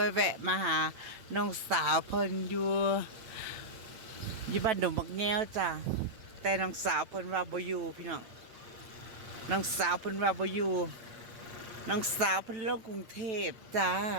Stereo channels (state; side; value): late; left; 9.0 ms